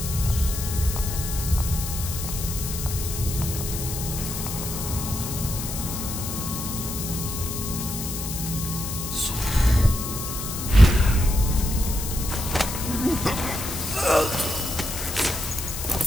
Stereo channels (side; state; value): left; noise; hiss, 6 dB below the sound